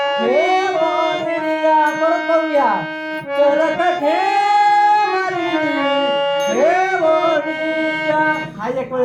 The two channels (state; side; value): identical; both; correlation 1.00